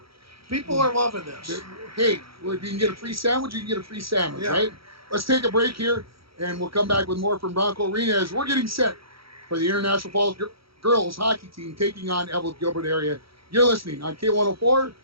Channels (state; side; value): late; left; 0.75 ms